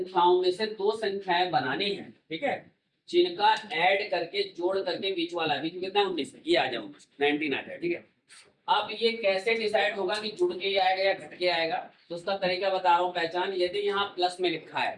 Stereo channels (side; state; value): both; identical; correlation 1.00